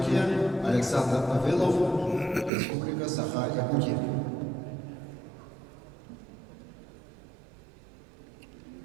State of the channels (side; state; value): left; drops out; at 2.5 s